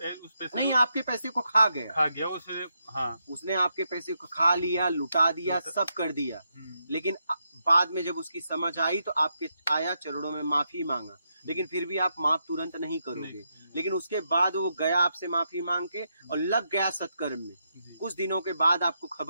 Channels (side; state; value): both; inverted; correlation -0.82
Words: पैसे नहीं, को आपके पैसे को खा गया, खा गया उसने। हाँ। उसने आपके पैसे को खा लिया, लुटा दिया, सब कर दिया। लेकिन बाद में जब उसकी समझ आई तो आपके आया चरणों में माफी मांगा, लेकिन फिर भी आप माफ तुरंत नहीं करोगे। लेकिन उसके बाद वो गया आपसे माफी मांग के और लग गया सत्कर्म में। कुछ दिनों के बाद आपको